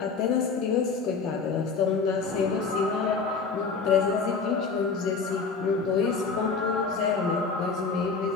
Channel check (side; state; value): right; quieter; 4.9 dB